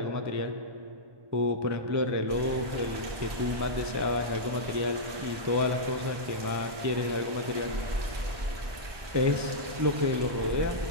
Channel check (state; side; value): late; left; 1.2 ms